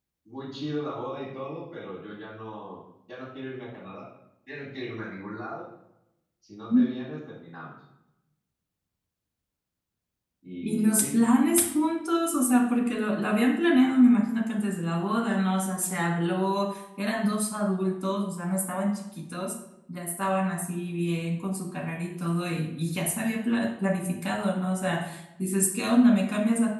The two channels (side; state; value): both; identical; correlation 1.00